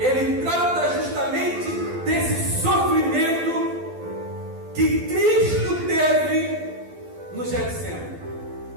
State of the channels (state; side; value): late; left; 12 ms